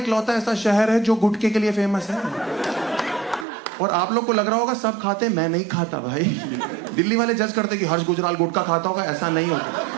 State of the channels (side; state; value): left; drops out; at 3.5 s